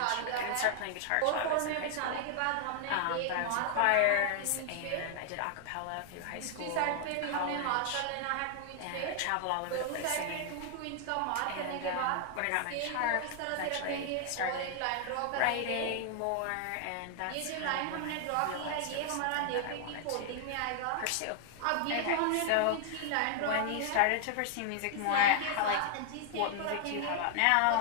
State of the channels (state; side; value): different; both; correlation 0.00